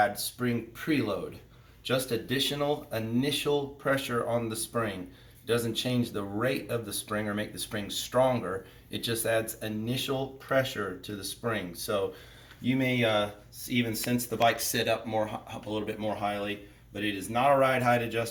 spring preload. Just additional initial pressure on the spring. It doesn't change the rate of the spring or make the spring stronger. It just adds initial pressure to the spring. So you may even sense the bike sit up a little bit more highly, but it is not a ride height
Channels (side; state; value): both; identical; correlation 1.00